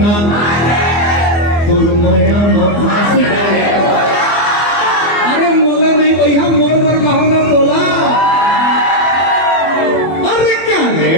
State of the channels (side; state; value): right; late; 24 ms